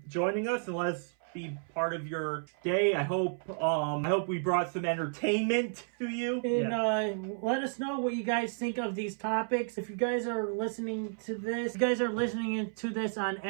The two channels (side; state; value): left; silent; 56 dB below the other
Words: joining us, and let's be part of your day. I hope we brought some entertainment to you. And let us know what you guys think of these topics. If you guys are listening to this, on